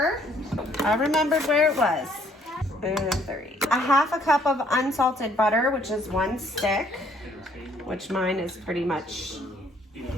I remembered where it was. And 3. 1/2 cup of unsalted butter, which is 1 stick, which mine is pretty much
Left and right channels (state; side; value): normal; both; correlation 0.64